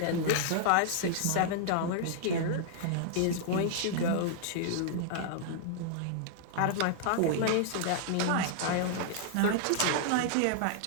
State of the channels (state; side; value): different; both; correlation -0.01